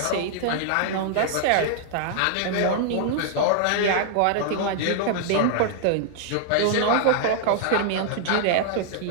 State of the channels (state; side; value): different; both; correlation -0.01